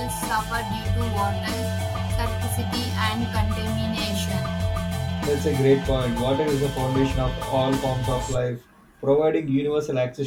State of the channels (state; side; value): identical; both; correlation 1.00